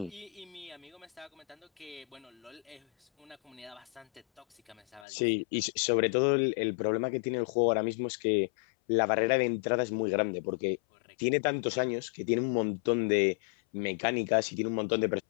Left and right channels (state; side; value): drops out; right; at 5.1 s